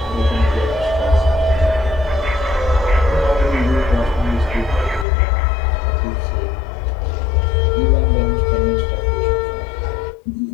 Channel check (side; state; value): right; drops out; at 5.1 s